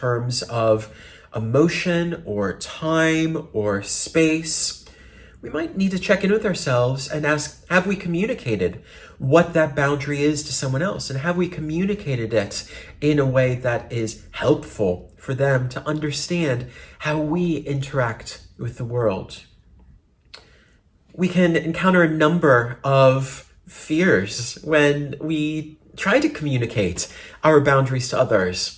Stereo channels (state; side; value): identical; both; correlation 1.00